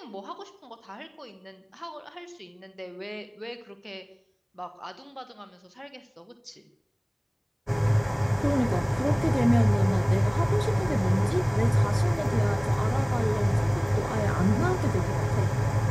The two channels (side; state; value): both; identical; correlation 1.00